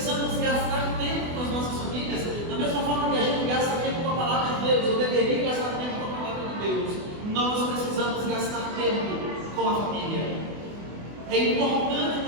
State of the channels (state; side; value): late; left; 24 ms